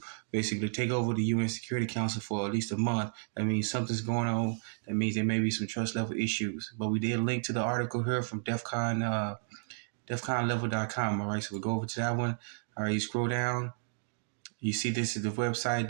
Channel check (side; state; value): left; silent; digital silence